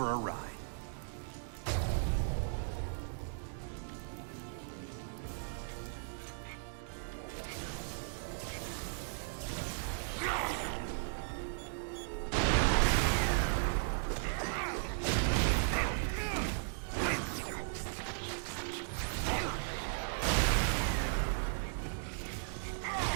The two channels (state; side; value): silent; left; digital silence